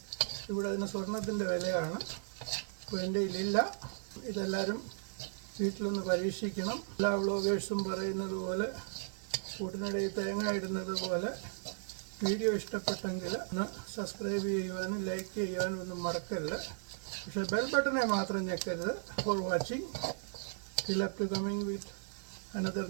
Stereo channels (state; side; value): silent; left; digital silence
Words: ഇവിടെ അതിന് സ്വർണത്തിൻ്റെ വിലയാണ്. അപ്പോൾ എൻ്റെ ഇതിലില്ല. ഇതെല്ലാവരും വീട്ടിലൊന്ന് പരീക്ഷിക്കണം. എല്ലാ വ്ളോഗേഴ്സും പറയുന്നത് പോലെ, കൂട്ടിനിടയിൽ തേങ്ങ ഇടുന്നത് പോലെ, വീഡിയോ ഇഷ്ടപ്പെട്ടെങ്കിൽ ഒന്ന് സബ്സ്ക്രൈബ് ചെയ്യുവാനും ലൈക്ക് ചെയ്യുവാനും ഒന്നും മറക്കരുത്. പക്ഷേ ബെൽ ബട്ടനെ മാത്രം ഞെക്കരുത്. For watching. Till up to coming with another